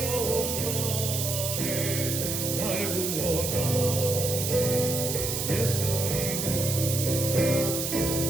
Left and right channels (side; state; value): right; noise; hiss, 2 dB below the sound